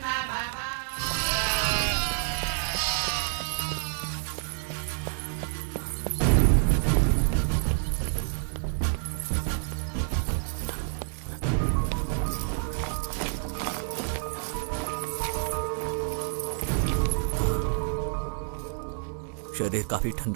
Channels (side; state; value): left; silent; digital silence